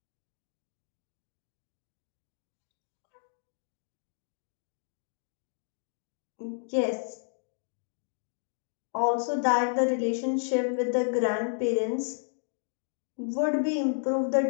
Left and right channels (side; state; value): right; silent; digital silence